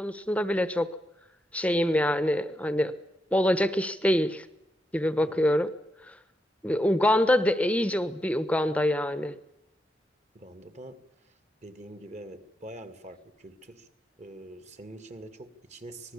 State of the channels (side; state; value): both; normal; correlation 0.84